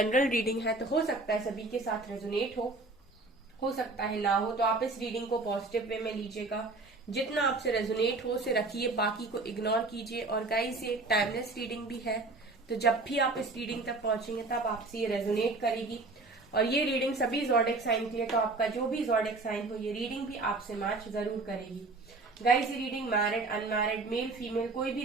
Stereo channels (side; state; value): left; quieter; 3.4 dB